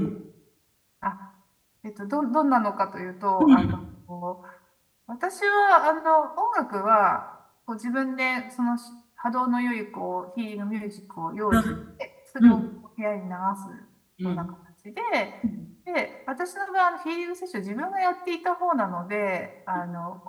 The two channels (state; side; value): identical; both; correlation 1.00